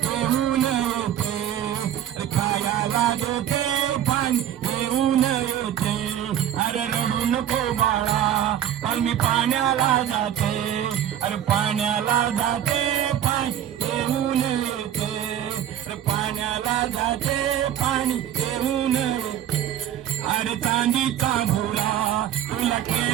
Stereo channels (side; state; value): left; quieter; 10.7 dB